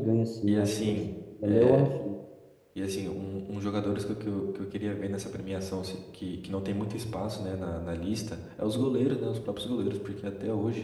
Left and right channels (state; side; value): identical; both; correlation 1.00